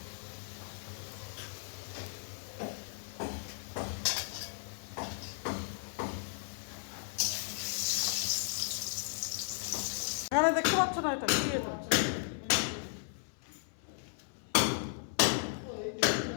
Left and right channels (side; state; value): right; silent; 54 dB below the other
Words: এখানে দেখতে পাচ্ছ না এটা কি এটা?